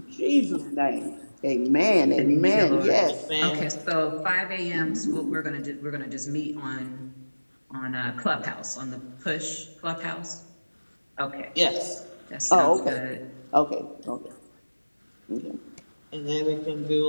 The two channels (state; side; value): inverted; both; correlation -1.00